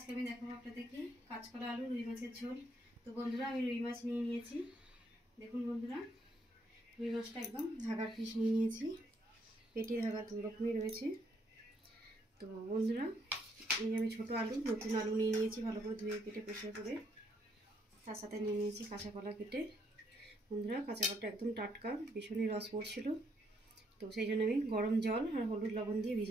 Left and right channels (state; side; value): normal; both; correlation 0.72